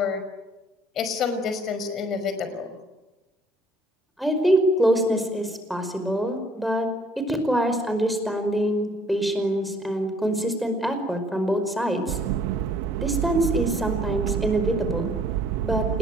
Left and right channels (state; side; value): normal; both; correlation 0.60